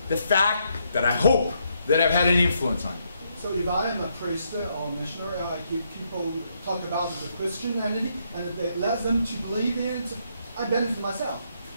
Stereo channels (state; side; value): inverted; both; correlation -0.75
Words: the fact that I hope that I've had an influence on you. So if I am a priest or missionary, I give people talk about the Christianity, and if they let them to believe in it, I benefit myself.